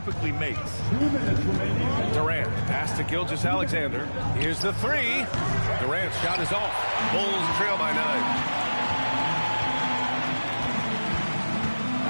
makes. Durant pass to Gilgeous-Alexander. Here's the three. Durant's shot is off. Bulls trail by 9.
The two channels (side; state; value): both; inverted; correlation -1.00